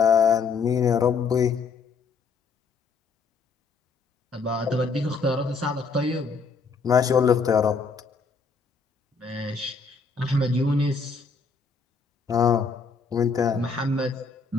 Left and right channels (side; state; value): right; quieter; 4.8 dB